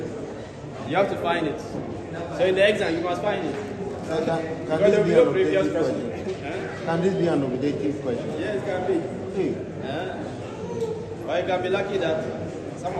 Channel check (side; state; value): both; identical; correlation 1.00